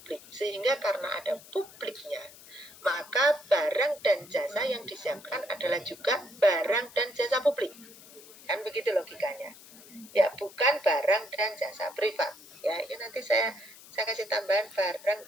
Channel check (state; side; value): noise; left; hiss, 20 dB below the sound